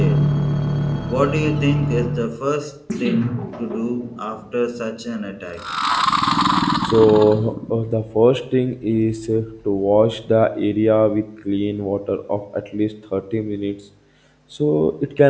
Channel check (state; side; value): identical; both; correlation 1.00